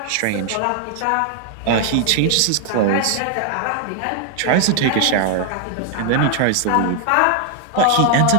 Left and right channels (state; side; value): different; both; correlation 0.00